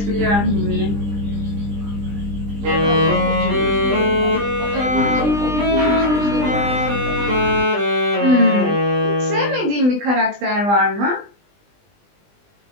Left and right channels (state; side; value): late; left; 20 ms